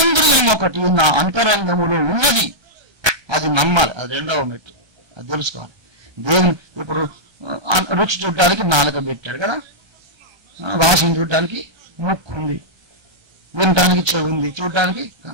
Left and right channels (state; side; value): late; left; 1.2 ms